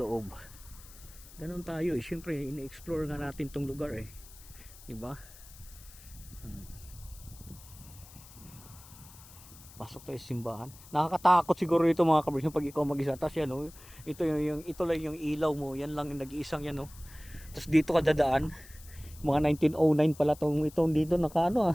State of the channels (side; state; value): left; noise; hiss, 20 dB below the sound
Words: Ganon tayo siyempre ini-explore nga natin tong lugar diba? Pasok tayo sa simbahan. Nakakatakot siguro ito mga kabrys pag ikaw mag-isa. Tapos yan, oh, ito lang yung ilaw mo. Yan lang yung nag-iisang yan. Oh. Tapos dito ka dadaan. Mga 1909 pala itong dito nakaano